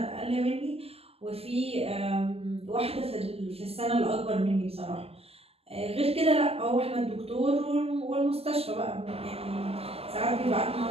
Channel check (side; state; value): left; late; 0.28 ms